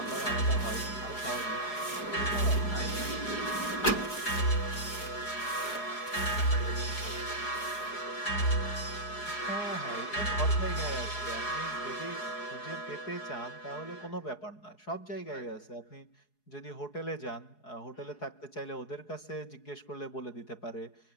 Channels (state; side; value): late; right; 4.8 ms